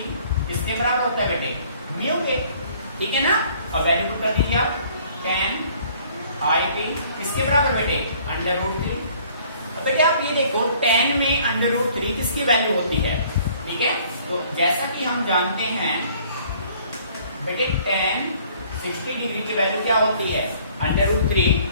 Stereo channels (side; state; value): both; inverted; correlation -0.57